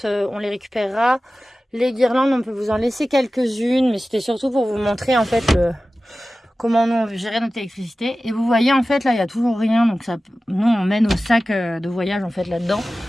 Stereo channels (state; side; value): normal; both; correlation 0.95